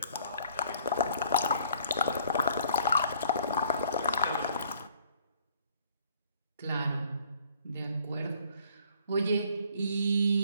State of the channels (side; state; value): both; inverted; correlation -0.59